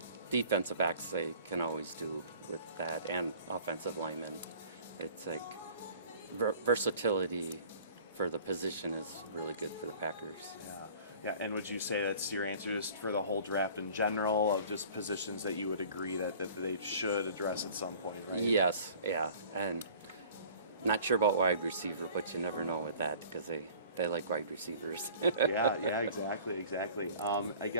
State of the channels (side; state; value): both; inverted; correlation -0.48